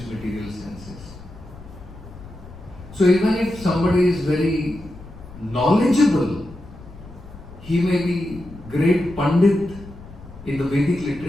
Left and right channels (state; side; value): noise; left; rumble, 17 dB below the sound